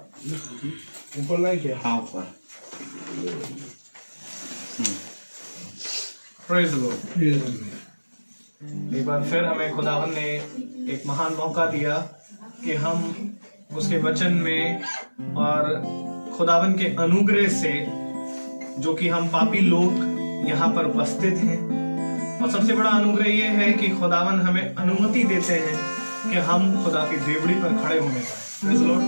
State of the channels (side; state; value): both; inverted; correlation -1.00